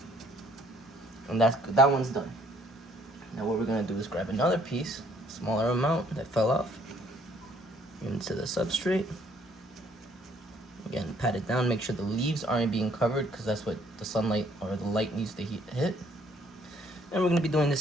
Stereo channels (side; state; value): both; normal; correlation 0.63